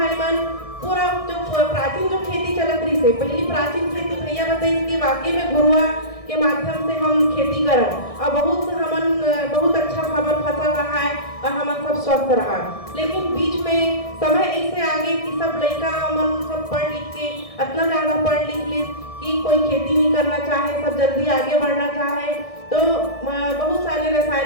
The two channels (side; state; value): right; late; 1.6 ms